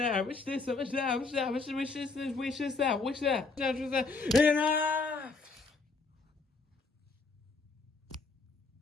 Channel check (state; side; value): quieter; right; 4.0 dB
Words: I wish this, I wish that, I wish that, I wish this, wish this, that, wish that, wish that. Enough!